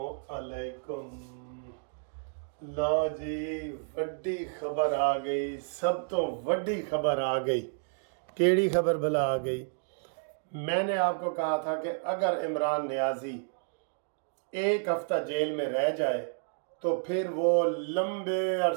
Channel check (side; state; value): left; silent; digital silence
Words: अलैकुम। लो जी, वड्डी खबर आ गई, सब तो वड्डी खबर आ गई। केड़ी खबर भला आ गई? मैंने आपको कहा था कि अगर इमरान नियाजी एक हफ्ता जेल में रह जाए तो फिर वो लंबे